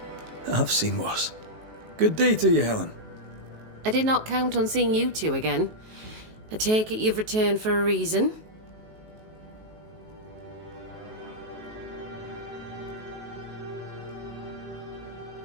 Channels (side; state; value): left; late; 19 ms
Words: I've seen worse. Good day to you, Helen. I did not count on seeing you two again. I take it you've returned for a reason?